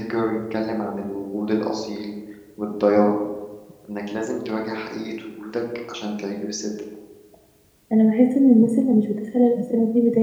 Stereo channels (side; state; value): both; identical; correlation 1.00